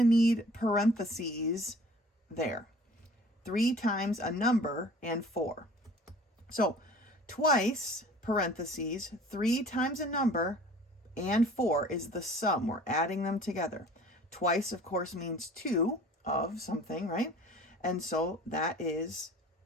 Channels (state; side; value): normal; both; correlation 0.48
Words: need parentheses there. 3 times a number and 4. So twice, parentheses, 3 times a number and 4 is the sum. We're adding them together. Twice, of course, means 2 of something, right? And so that is